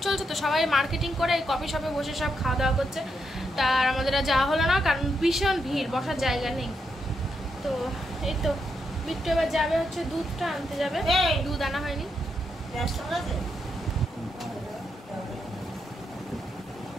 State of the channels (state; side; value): normal; both; correlation 0.81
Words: চলছে তো সবাই মার্কেটিং করে কফি শপে বসে সব খাওয়া দাওয়া করছে। তার আমাদের আর যাওয়া হলো না, কারণ ভীষণ ভিড়, বসার জায়গা নেই। তো এই তো বিট্টু এবার যাবে হচ্ছে দুধটা আনতে যাবে, দুধ আনা হয়নি।